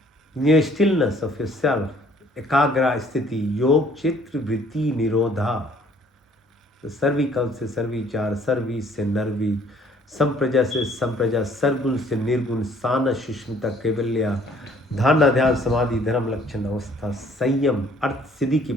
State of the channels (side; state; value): both; normal; correlation 0.59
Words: In your stillness of yourself, ekagra sthiti, योग, चित्र, वृत्ति, निरोधा. तो सर्विकल से सर्विचार, सर्वी से नर्वी, संप्रजा से संप्रजा, सरगुण से निर्गुण, साना, सुष्मिता, कैवल्या, धारणा, ध्यान, समाधि, धर्म, लक्षण, अवस्था, संयम, अर्थ सिद्धि की